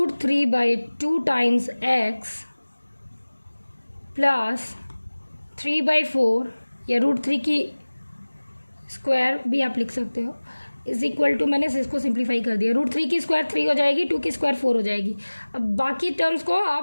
times x plus 3/4 या √3 की square भी आप लिख सकते हो, इज इक्वल टू, मैंने इसको सिंप्लीफाई कर दिया, √3 की स्क्वायर 3 हो जाएगी, 2 की स्क्वायर 4 हो जाएगी। अब बाकी टर्म्स को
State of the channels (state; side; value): inverted; both; correlation -1.00